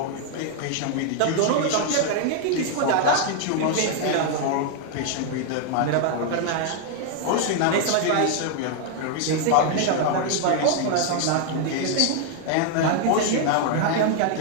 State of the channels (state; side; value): different; both; correlation 0.00